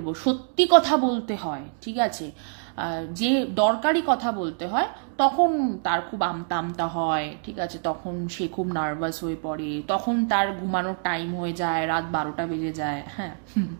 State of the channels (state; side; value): silent; left; digital silence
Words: সত্যি কথা বলতে হয়, ঠিক আছে, যে দরকারি কথা বলতে হয়, তখন তার খুব আমতা আমতা হয়, ঠিক আছে, তখন সে খুব নার্ভাস হয়ে পড়ে, তখন তার ঘুমানোর টাইম হয়ে যায়, রাত 12টা বেজে যায়। হ্যাঁ,